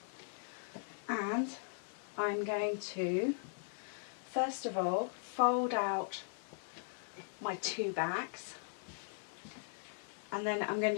And I'm going to, first of all, fold out my two backs. And then I'm going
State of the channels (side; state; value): right; silent; 52 dB below the other